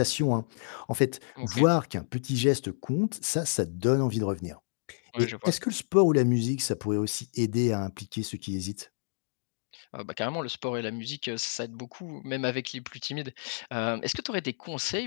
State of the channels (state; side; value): silent; right; digital silence